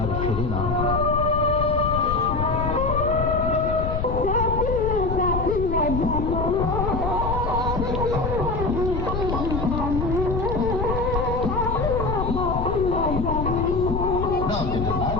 আর ফেরে না।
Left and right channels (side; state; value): left; noise; rumble, 3 dB below the sound